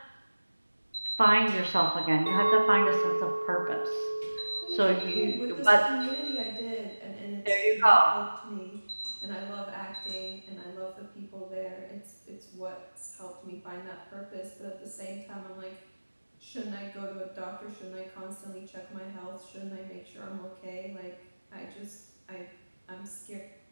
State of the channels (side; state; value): both; inverted; correlation -1.00